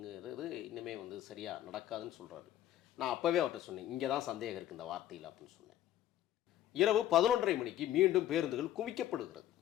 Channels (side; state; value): right; quieter; 12.4 dB